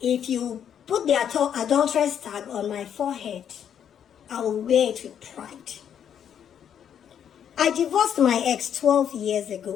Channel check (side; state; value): right; quieter; 8.8 dB